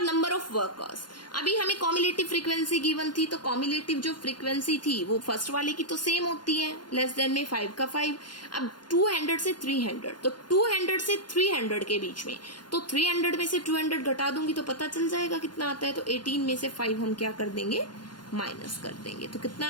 नंबर ऑफ वर्कर्स। अभी हमें कॉम्युलेटिव फ्रीक्वेंसी गिवन थी, तो कॉम्युलेटिव जो फ्रीक्वेंसी थी वो फर्स्ट वाले की तो सेम होती है, लेस देन में 5 का 5। अब 200 से 300, तो 200 से 300 के बीच में, तो 300 में से 200 घटा दूंगी तो पता चल जाएगा कितना आता है। तो 18 में से 5 हम क्या कर देंगे, माइनस कर देंगे। तो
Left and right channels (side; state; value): right; late; 0.71 ms